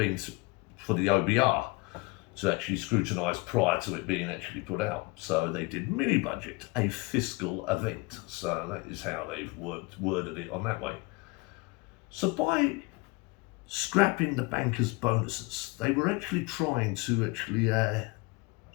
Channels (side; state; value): right; quieter; 25.5 dB